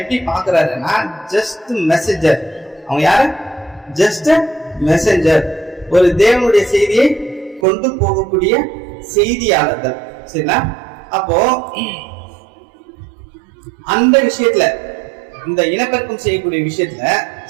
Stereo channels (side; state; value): left; drops out; at 7.7 s